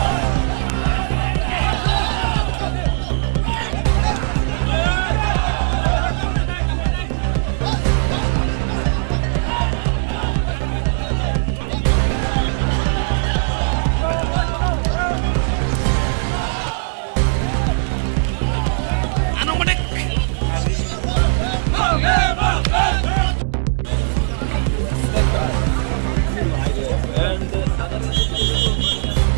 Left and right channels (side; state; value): left; silent; digital silence